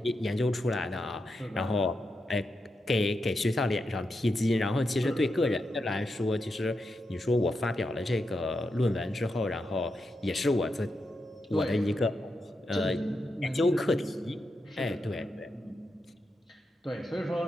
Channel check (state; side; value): normal; both; correlation 0.86